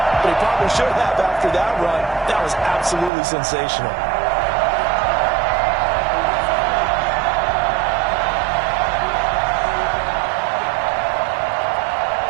but he probably should have after that run. That was absolutely sensational.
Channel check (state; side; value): drops out; left; at 3.1 s